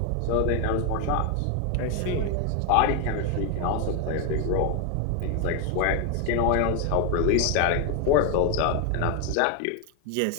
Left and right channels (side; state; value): both; different; correlation 0.01